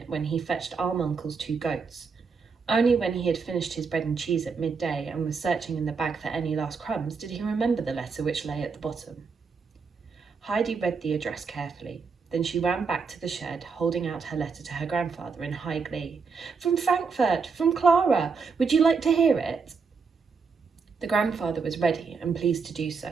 when he fetched Alm Uncle's 2 goats. Only when he had finished his bread and cheese at midday and was searching in the bag for any last crumbs did he remember the letter which lay at the bottom. Heidi read the address carefully. Then she ran back to the shed, holding out her letter to her grandfather in high glee. "From Frankfurt, from Clara. Would you like to hear it?" The grandfather was ready and pleased to do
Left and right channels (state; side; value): quieter; left; 5.1 dB